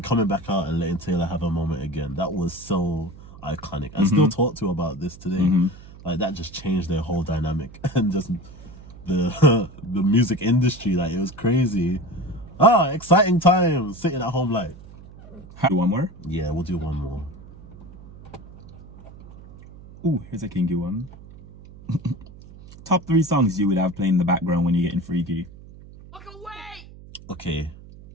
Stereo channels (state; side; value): noise; right; hum, 19 dB below the sound